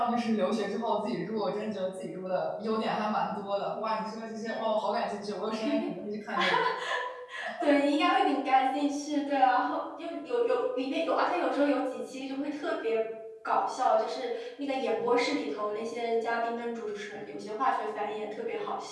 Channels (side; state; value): both; identical; correlation 1.00